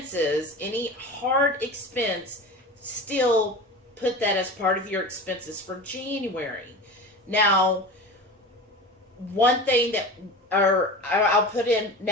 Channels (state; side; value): normal; both; correlation 0.32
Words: any hard expense, still put that as part of your expenses for January. Now, one thing I'll put in